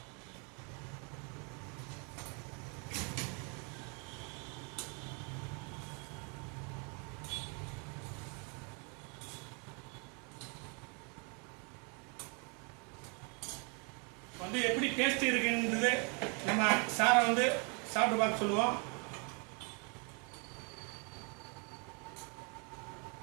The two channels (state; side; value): quieter; left; 34.9 dB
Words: வந்து எப்படி டேஸ்ட் இருக்குன்றது நம்ம சாரை வந்து சாப்பிட்டு பார்க்க சொல்லுவோம்.